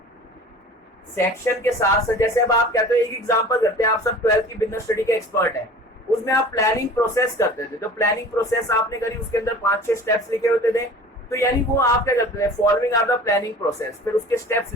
सेक्शन के साथ साथ। जैसे अब आप कहते हो, एक एग्जांपल करते हैं, आप सब 12th की बिजनेस स्टडी के एक्सपर्ट हैं, उसमें आप प्लानिंग प्रोसेस करते थे, तो प्लानिंग प्रोसेस आपने करी, उसके अंदर 5-6 स्टेप्स लिखे होते थे, तो यानी वो आप क्या करते थे? Following are the planning process, फिर उसके स्टेप्स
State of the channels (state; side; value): normal; both; correlation 0.42